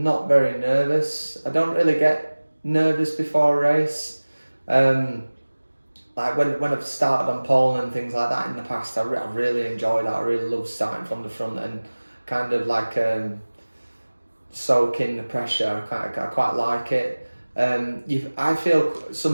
not very nervous. I don't really get nervous before a race. Like when I've started on pole and things like that in the past, I really enjoy that. I really love starting from the front and kind of like soak in the pressure. I quite like it. I feel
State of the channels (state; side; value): inverted; both; correlation -1.00